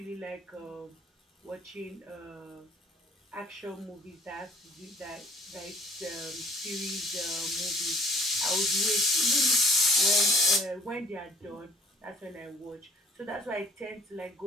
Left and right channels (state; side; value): normal; both; correlation 0.56